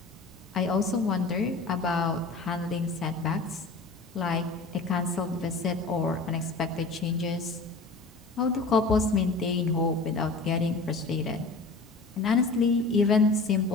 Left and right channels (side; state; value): right; quieter; 3.6 dB